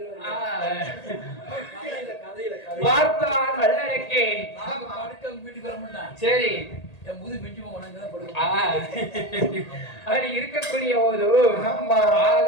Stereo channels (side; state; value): right; late; 1.8 ms